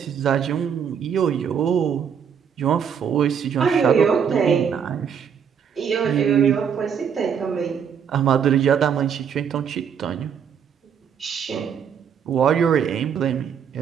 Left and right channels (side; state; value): left; quieter; 7.5 dB